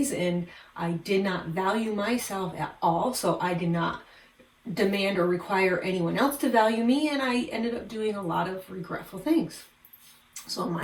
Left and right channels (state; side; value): identical; both; correlation 1.00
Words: and I did not value myself at all. So I did not demand or require anyone else to value me, and I ended up doing a lot of regretful things. So